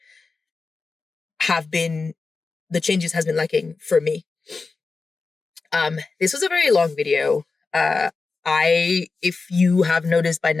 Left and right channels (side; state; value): right; quieter; 4.2 dB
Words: the changes has been lacking for me. This was a very long video. If you have noticed by